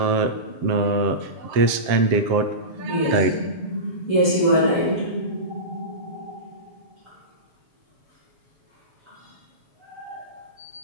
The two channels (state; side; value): late; left; 7.6 ms